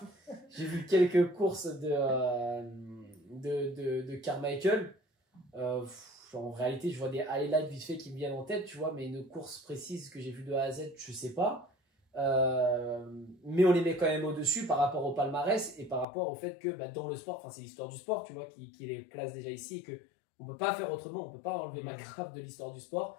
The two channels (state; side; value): drops out; right; at 16.1 s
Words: J'ai vu quelques courses de Carmichael. En réalité je vois des highlights vite fait qui me viennent en tête, tu vois, mais une course précise que j'ai vue de A à Z je sais pas. Mais on les met quand même au-dessus par rapport au palmarès et par rapport au fait que dans le sport, c'est l'histoire du sport, tu vois, qui les place déjà ici, et que on peut pas faire autrement, on peut pas enlever McGrath de l'histoire du sport,